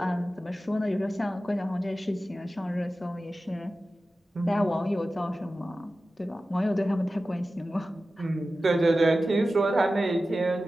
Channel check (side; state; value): both; normal; correlation 0.94